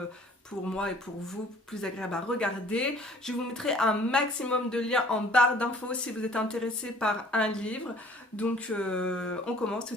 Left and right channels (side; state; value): both; normal; correlation 0.54